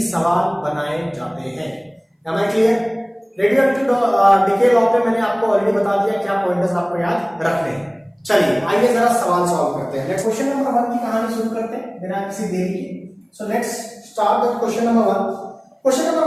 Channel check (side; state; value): both; identical; correlation 1.00